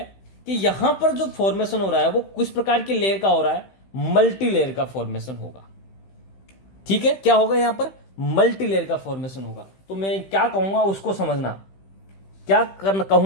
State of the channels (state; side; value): late; right; 15 ms